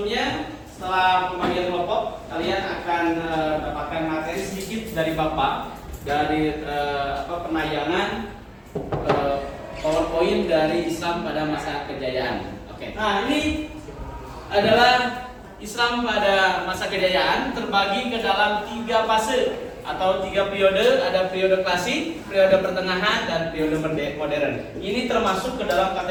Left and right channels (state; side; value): identical; both; correlation 1.00